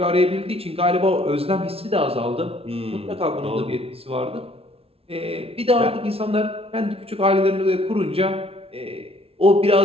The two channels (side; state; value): left; late; 0.28 ms